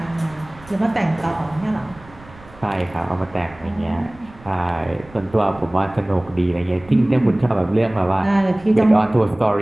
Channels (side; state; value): right; noise; rumble, 23 dB below the sound